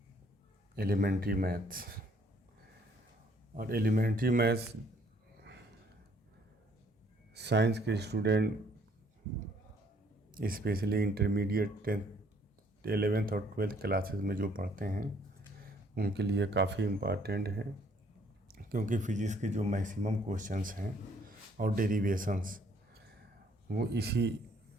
एलिमेंट्री मैथ्स। और एलिमेंट्री मैथ्स साइंस के student specially intermediate 10th 11th और 12th क्लासेस में जो पढ़ते हैं उनके लिए काफ़ी इम्पॉर्टेंट है, क्योंकि फिजिक्स के जो मैक्सिमम क्वेश्चंस हैं और डेरिवेशंस वो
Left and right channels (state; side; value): normal; both; correlation 0.63